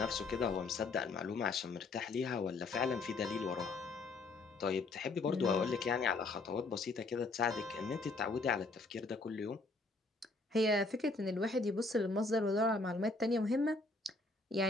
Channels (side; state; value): right; quieter; 3.4 dB